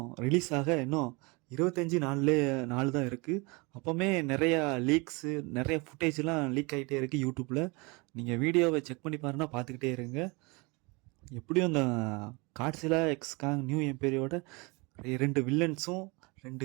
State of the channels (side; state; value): left; quieter; 27.8 dB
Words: ரிலீஸ் ஆக இன்னும் 25 நாள் தான் இருக்குது. அப்போவுமே நிறையா லீக்ஸு நிறைய ஃபுட்டேஜ்லாம் லீக் ஆகிட்டே இருக்குது யூடியூப்பில். நீங்கள் வீடியோவை செக் பண்ணி பாருன்னா பார்த்துக்கிட்டே இருங்க. எப்படியும் இந்த காட்ஸிலா எக்ஸ் காங் நியூ எம்பையரோட 2 வில்லன்ஸும்